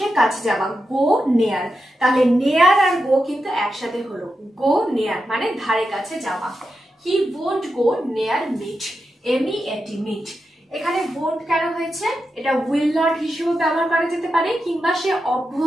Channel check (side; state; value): both; normal; correlation 0.88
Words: কাছে যাওয়া, go near। তাহলে near আর go কিন্তু একসাথে হলো, go near মানে ধারে কাছে যাওয়া। He won't go near meat, MEAT, meat। এখানে won't কেন হয়েছে? এটা will not হিসেবে ব্যবহার করা যেতে পারে, কিংবা সে